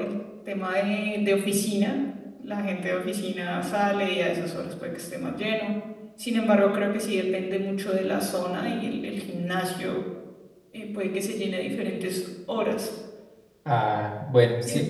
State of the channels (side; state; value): both; identical; correlation 1.00